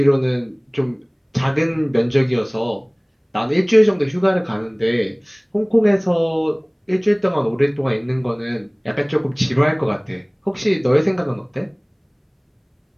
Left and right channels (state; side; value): identical; both; correlation 1.00